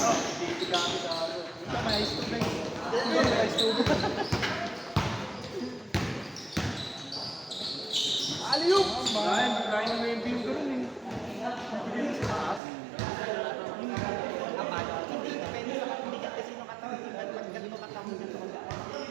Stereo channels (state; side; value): drops out; left; at 12.6 s